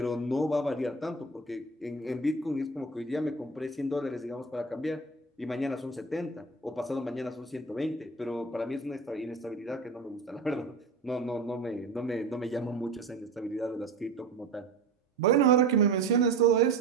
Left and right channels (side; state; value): left; quieter; 3.8 dB